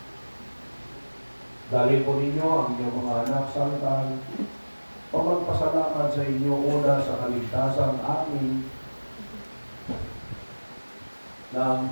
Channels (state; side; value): inverted; both; correlation -1.00